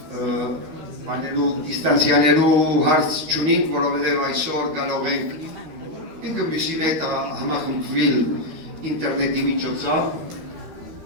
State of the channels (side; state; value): left; late; 13 ms